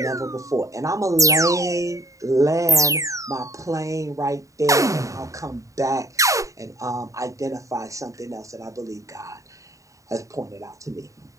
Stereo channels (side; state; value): left; late; 0.16 ms